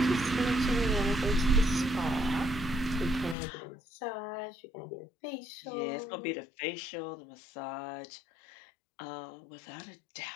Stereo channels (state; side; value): drops out; right; at 3.4 s